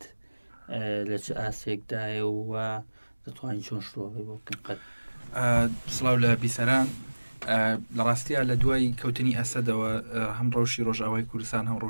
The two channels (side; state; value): both; inverted; correlation -1.00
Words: لە چ ئاسێکدایە و دەتوانین چۆن شڕۆڤی بۆ بکەن؟ قەت سڵاو لە بیسەران. لە ڕاستیە لە دوای کەوتنی ئەسەدەوە هەم ڕەوشی ڕۆژاوای کوردستان هەم